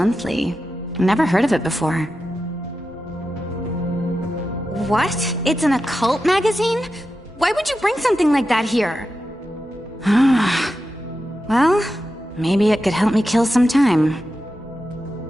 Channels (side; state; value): both; normal; correlation 0.90